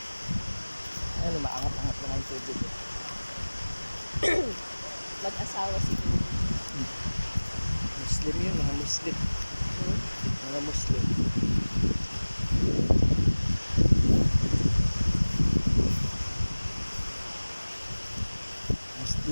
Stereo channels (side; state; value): both; inverted; correlation -1.00